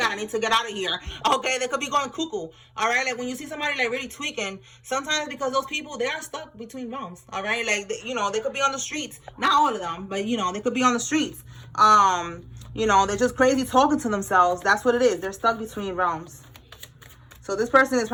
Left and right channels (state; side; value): identical; both; correlation 1.00